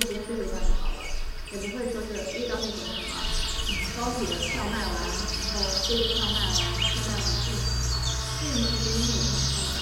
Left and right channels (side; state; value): both; identical; correlation 1.00